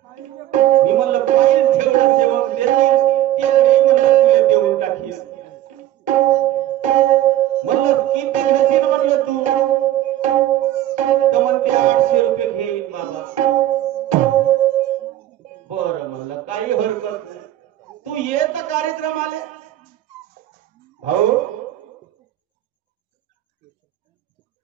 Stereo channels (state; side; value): quieter; left; 13.4 dB